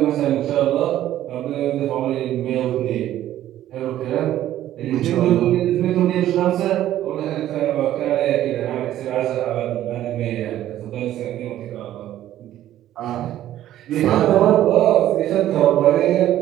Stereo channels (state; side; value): quieter; left; 12.8 dB